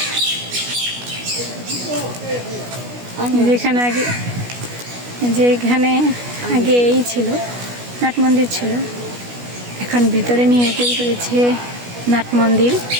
যেখানে আগে, যেখানে আগে এই ছিল নাট মন্দির ছিল, এখন ভিতরে নিয়ে তৈরি করেছে নাট মন্দির।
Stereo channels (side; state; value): left; late; 16 ms